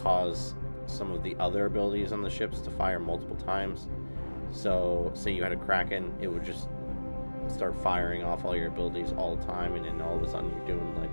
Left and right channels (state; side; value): inverted; both; correlation -1.00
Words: some of the other abilities on the ships to fire multiple times. So say you had a Kraken, it would just start firing off all your abilities all the time, and then all of a sudden you're doing